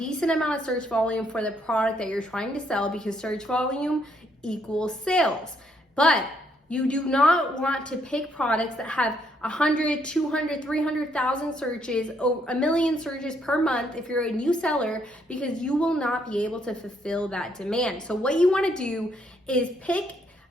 amount of search volume for the product that you're trying to sell, because search volume equals sales. But you do not want to pick products that have 100, 200, 300,000 searches, or 1 million searches per month if you're a new seller, because you will not be able to fulfill that demand. So what you want to do is pick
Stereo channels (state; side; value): normal; both; correlation 0.71